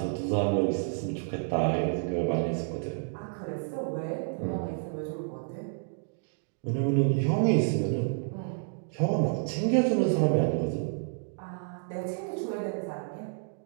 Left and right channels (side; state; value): left; silent; digital silence